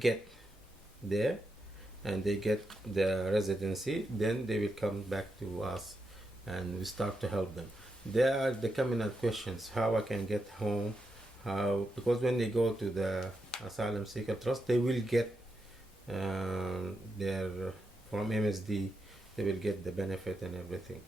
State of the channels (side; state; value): both; normal; correlation 0.85